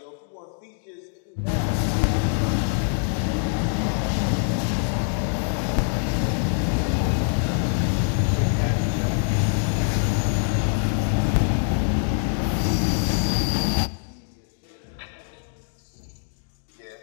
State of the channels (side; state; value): right; silent; 59 dB below the other